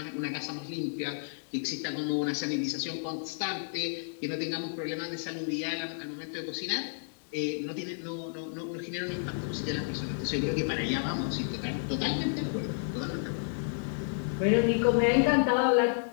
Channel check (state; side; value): silent; right; digital silence